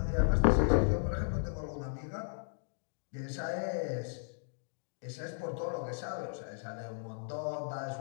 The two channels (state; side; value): silent; right; digital silence